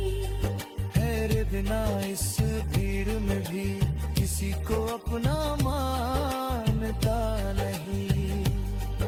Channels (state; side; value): identical; both; correlation 1.00